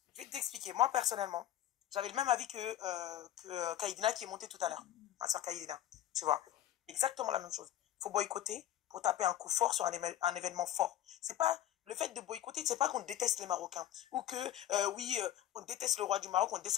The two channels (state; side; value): quieter; right; 12.3 dB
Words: je vais t'expliquer. Moi, personnellement, j'avais le même avis que Kaïdina qui est monté tout à l'heure. Ma soeur Kaïdina, tu vois. Exactement la même chose. faut boycotter pour taper un coup fort sur un événement fort. C'est pas le fait de boycotter, c'est pas qu'on déteste les Marocains ou que oui, on déteste le roi du Maroc, on